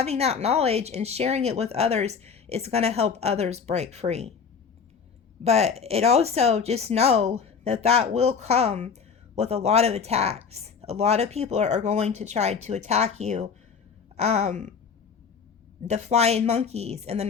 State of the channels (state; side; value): quieter; right; 6.2 dB